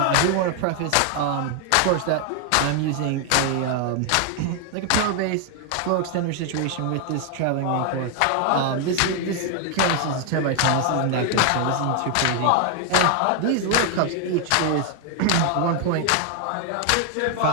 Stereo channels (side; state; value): both; different; correlation 0.00